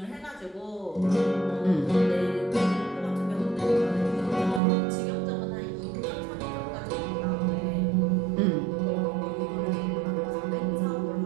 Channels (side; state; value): left; drops out; at 4.6 s